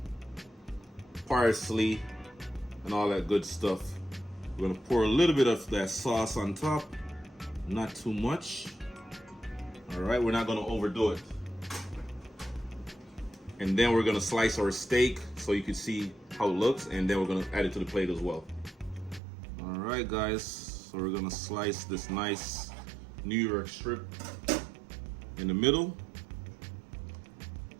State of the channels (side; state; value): left; drops out; at 19.2 s